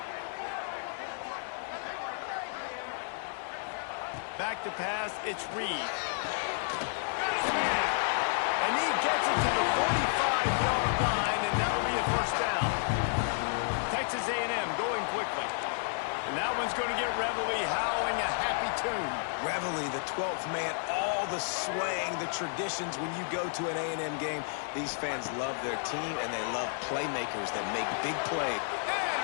Back to pass, it's Reed. Got his man. And he gets it to the 45-yard line, and that'll be a first down. Texas A&M going quickly. And that one's going to get Reveille howling a happy tune. Reveille, the 12th man, all the swaying, the traditions when you go to an A&M game. These fans love their team, and they love playmakers that make big plays.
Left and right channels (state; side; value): silent; right; 57 dB below the other